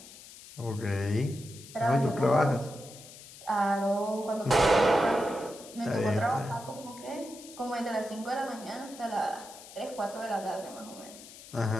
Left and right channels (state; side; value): noise; left; hiss, 17 dB below the sound